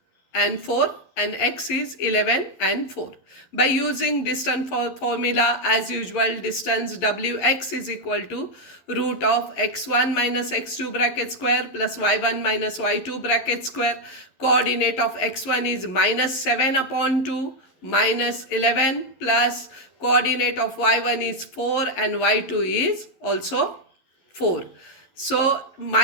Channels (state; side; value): late; right; 11 ms